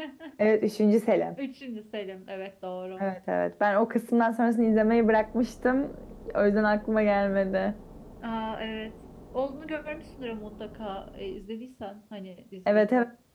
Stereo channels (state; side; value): identical; both; correlation 1.00